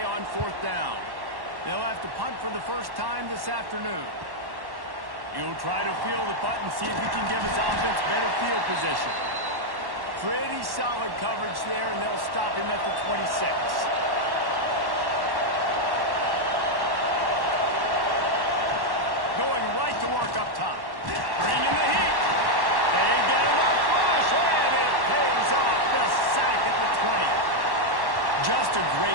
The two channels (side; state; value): left; late; 1.1 ms